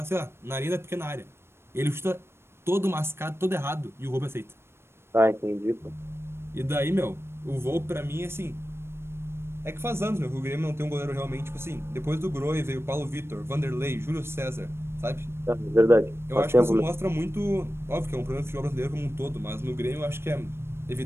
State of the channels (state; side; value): late; left; 0.12 ms